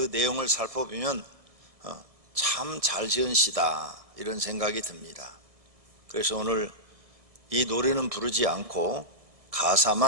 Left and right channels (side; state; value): left; late; 1.7 ms